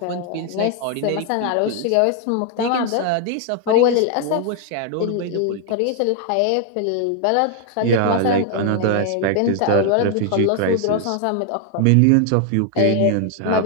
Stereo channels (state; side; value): different; both; correlation 0.00